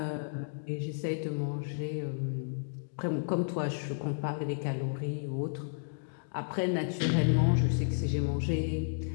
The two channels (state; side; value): silent; right; digital silence